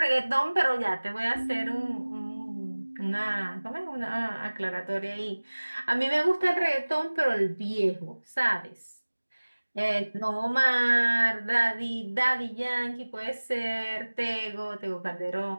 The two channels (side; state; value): both; inverted; correlation -1.00